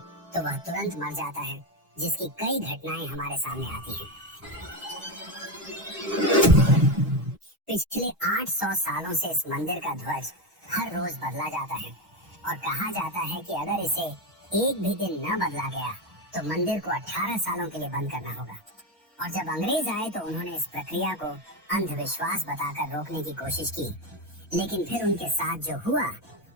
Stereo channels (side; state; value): both; normal; correlation 0.13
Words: तो वह तुरंत मर जाता है, जिसकी कई घटनाएं हमारे सामने आती हैं। पिछले 800 सालों से इस मंदिर का ध्वज हर रोज बदला जाता है और कहा जाता है कि अगर इसे एक भी दिन न बदला गया तो मंदिर को 18 सालों के लिए बंद करना होगा। और जब अंग्रेज आए तो उन्होंने इस प्रक्रिया को अंधविश्वास बताकर रोकने की कोशिश की, लेकिन फिर उनके साथ जो हुआ